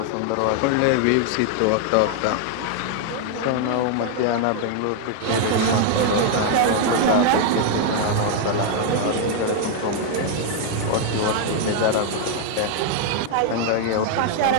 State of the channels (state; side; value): different; both; correlation 0.00